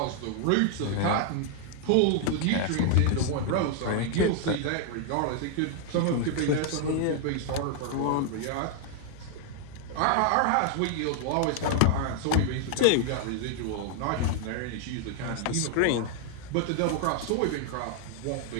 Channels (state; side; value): different; both; correlation 0.00